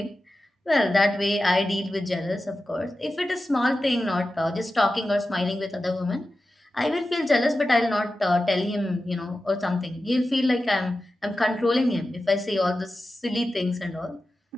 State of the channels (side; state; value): both; normal; correlation 0.93